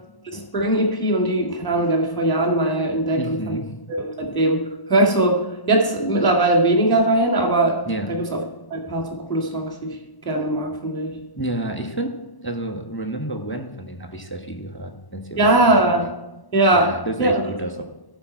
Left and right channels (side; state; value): right; late; 1.0 ms